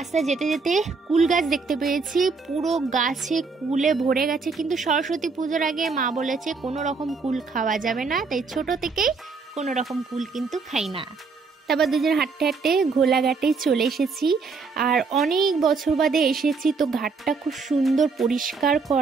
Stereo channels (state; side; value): quieter; left; 4.6 dB